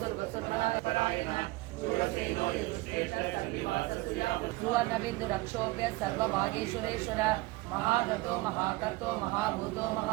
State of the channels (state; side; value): quieter; left; 21.0 dB